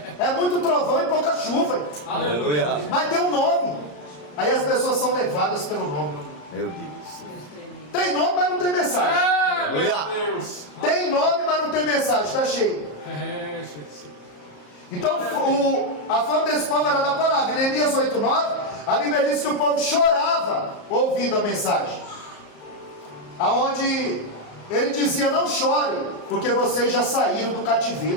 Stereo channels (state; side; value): late; right; 34 ms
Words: É muito trovão e pouca chuva. Aleluia. Mas tem um nome. Aí as pessoas são levadas pelo nome. Meu Deus. Tem nome, mas não tem mensagem. Aleluia. Tem nome, mas não tem mensagem. Está cheio. Então a fama desse povo era da palavra. Em Neemias 8:9, a Bíblia diz que o povo chorava ouvindo a mensagem. Aonde ele dizia: não chore, porque vocês já saíram do